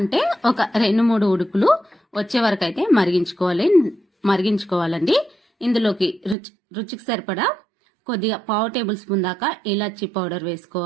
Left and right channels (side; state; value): left; drops out; at 6.4 s